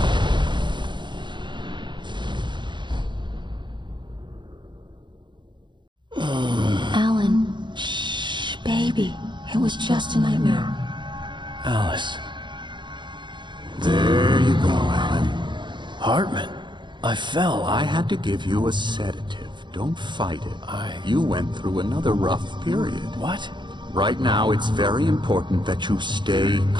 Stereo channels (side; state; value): left; late; 0.23 ms